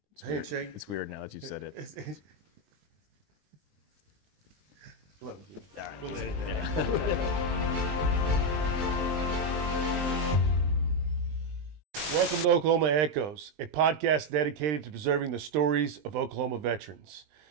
It's handshake. It's weird now that you've said it. Love you. All right. We'll edit that. Welcome to Oklahoma Echoes, a podcast dedicated to preserving the stories of Oklahoma veterans.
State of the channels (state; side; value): late; left; 20 ms